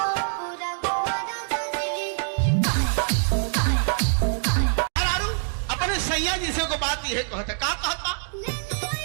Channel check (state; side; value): silent; left; digital silence